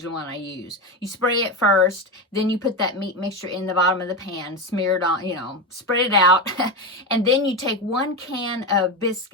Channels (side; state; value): both; normal; correlation 0.16